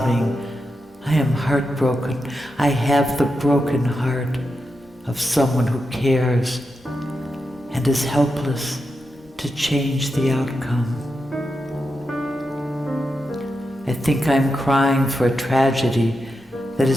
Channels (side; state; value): both; normal; correlation 0.88